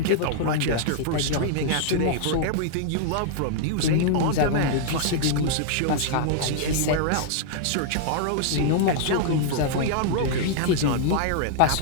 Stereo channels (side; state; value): both; different; correlation -0.01